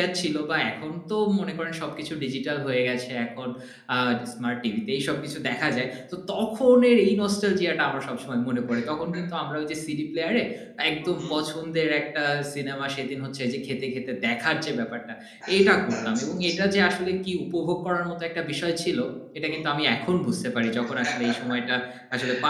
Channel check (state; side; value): identical; both; correlation 1.00